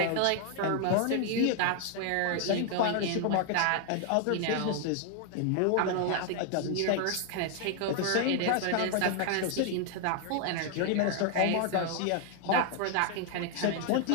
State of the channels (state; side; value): different; both; correlation 0.00